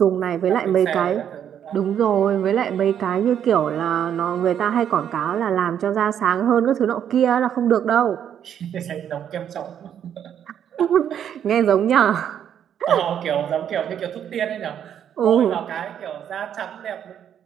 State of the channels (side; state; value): left; quieter; 9.3 dB